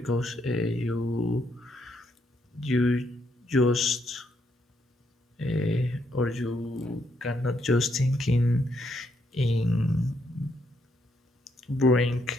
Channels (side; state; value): both; normal; correlation 0.75